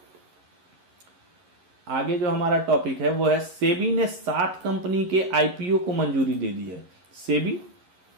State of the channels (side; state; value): left; late; 11 ms